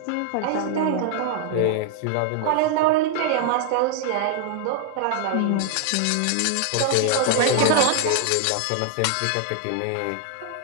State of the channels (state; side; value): different; both; correlation 0.00